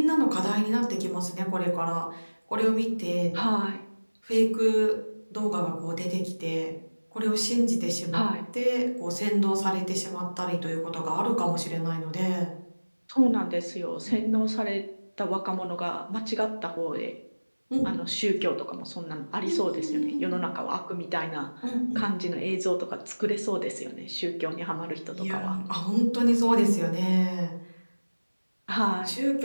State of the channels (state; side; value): inverted; both; correlation -1.00